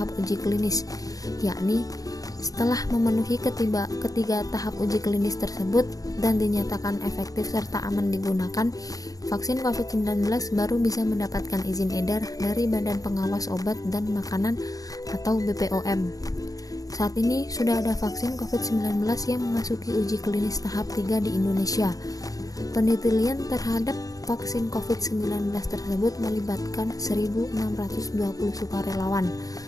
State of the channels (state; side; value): late; right; 0.17 ms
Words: uji klinis, yakni setelah memenuhi ketiga tahap uji klinis tersebut dan dinyatakan efektif serta aman digunakan, vaksin COVID-19 baru bisa mendapatkan izin edar dari Badan Pengawas Obat dan Makanan atau BPOM. Saat ini sudah ada vaksin COVID-19 yang memasuki uji klinis tahap 3 di Indonesia. Penelitian terhadap vaksin COVID-19 tersebut melibatkan 1.620 sukarelawan.